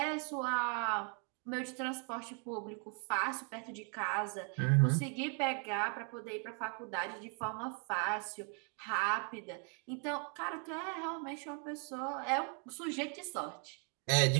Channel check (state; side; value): quieter; left; 39.8 dB